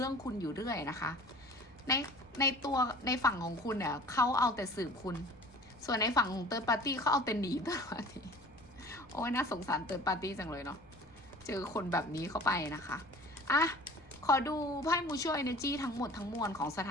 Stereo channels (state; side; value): noise; left; rumble, 26 dB below the sound